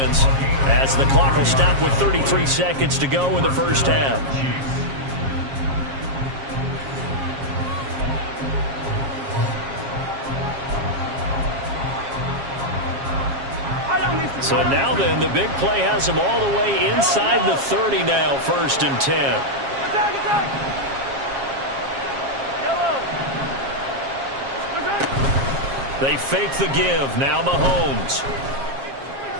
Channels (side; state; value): left; late; 7.4 ms